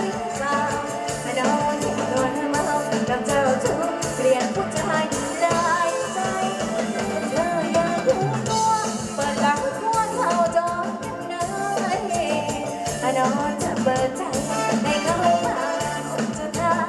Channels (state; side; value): identical; both; correlation 1.00